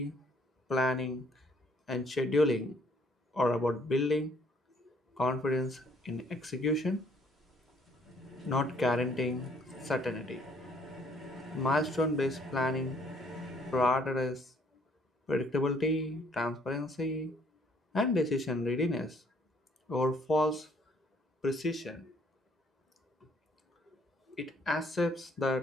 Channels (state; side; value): normal; both; correlation 0.64